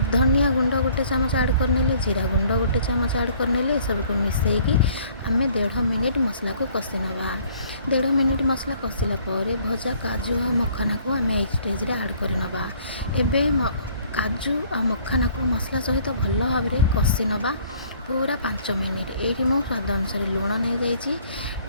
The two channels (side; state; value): both; inverted; correlation -0.58